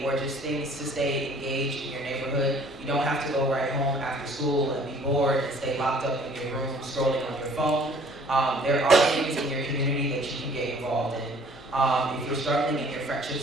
or just things to stay engaged in your neighborhood. You don't have to go right home after school and be bored and stay locked up in your room scrolling on your phone. There are things in your community that you can get involved in. If you're struggling in your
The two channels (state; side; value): normal; both; correlation 0.55